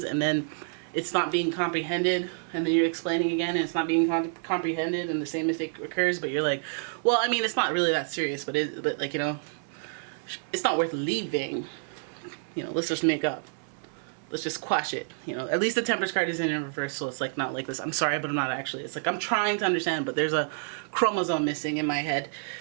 and then it's not being comprehended, and then you're explaining again and it's not being comprehended, and the same mistake occurs, but you're like, well, I mean, it's not really that serious, but like, you know, it's not worth leaving. You know, let's just make up. Let's just quash it. You know, at least the Temperance card is in reverse, so it's like not like this. I'm sorry, but I'm not actually. It's like I'm trying to understand, but there's a chromosome missing in my head.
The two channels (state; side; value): silent; left; 58 dB below the other